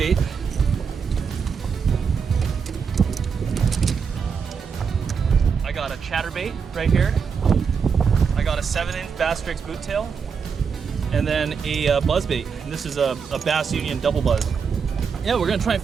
I got a chatterbait right here. I got a 7-inch Basstrix boot tail, and then a buzzbait. This is a Bass Union double buzz. Yeah, we're gonna try and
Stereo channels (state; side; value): quieter; left; 6.1 dB